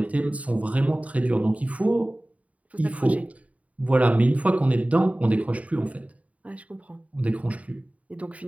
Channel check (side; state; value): left; late; 0.068 ms